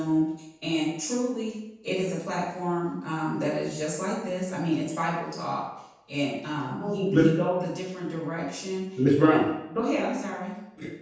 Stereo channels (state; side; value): identical; both; correlation 1.00